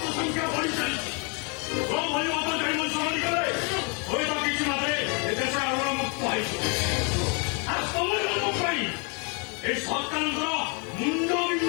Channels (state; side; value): quieter; right; 34.4 dB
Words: ସଂଖ୍ୟା ବଢି ଚାଲିଛି। ଭଳି ଅବକାରୀ ମଣିଷ କଲେ ହୁଏତ କିଛି ମାତ୍ରେ ଏ ଦେଶ ଆଗର ମୁକ୍ତ ହେଇଯିବ। ଆଉ ତମମାନଙ୍କ ପାଇଁ ଏ ସରକାରଙ୍କର ମୁଣ୍ଡ